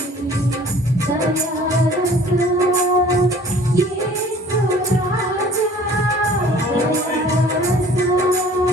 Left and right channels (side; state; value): both; normal; correlation 0.50